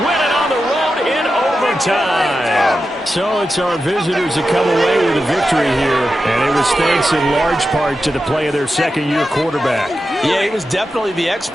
win it on the road in overtime. So it's our visitors that come away with a victory here. And it was thanks in large part to the play of their second-year quarterback. Yeah, he was definitely the X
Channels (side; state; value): both; normal; correlation 0.90